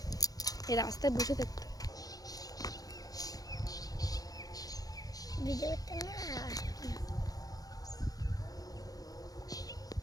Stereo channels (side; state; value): right; late; 0.18 ms